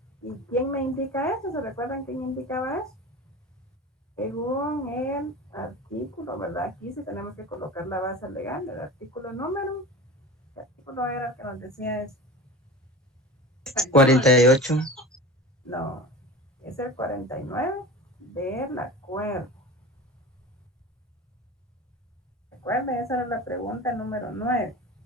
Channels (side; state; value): both; normal; correlation 0.34